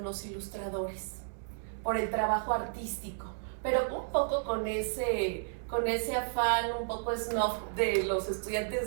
los ilustradores, por el trabajo artístico, pero un poco con ese afán un poco snob de los estudiantes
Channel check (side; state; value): left; silent; 56 dB below the other